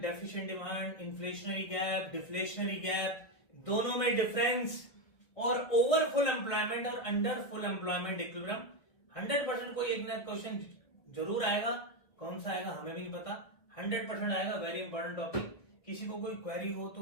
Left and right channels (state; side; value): late; right; 1.9 ms